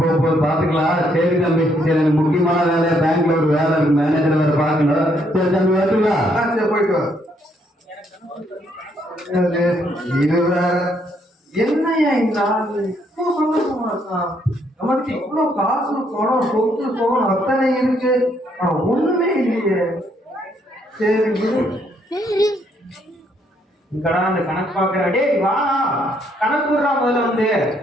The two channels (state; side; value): normal; both; correlation 0.71